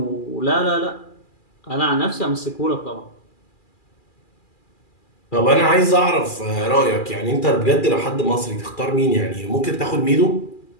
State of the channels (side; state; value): right; late; 2.4 ms